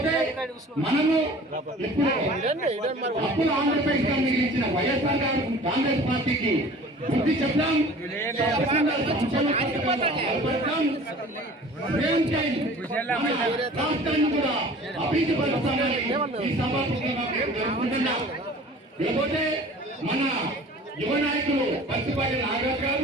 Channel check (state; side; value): normal; both; correlation 0.45